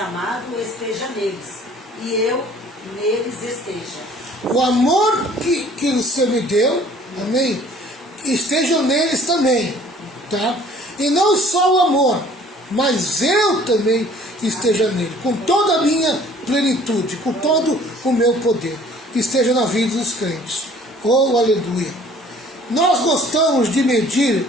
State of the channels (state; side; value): normal; both; correlation 0.54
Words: esteja neles, e eu neles esteja. O amor que você me deu, amém, esteja neles também, tá? E não só o amor, mas eu também esteja nele, com toda a minha plenitude, com todo o meu poder, esteja na vida dos crentes. Oh, aleluia! Nós gostamos de medir